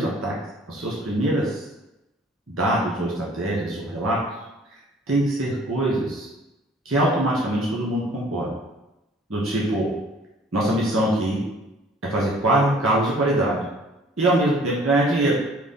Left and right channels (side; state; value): both; normal; correlation 0.54